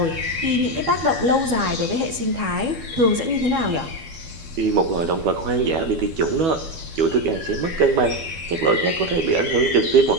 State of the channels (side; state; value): left; late; 12 ms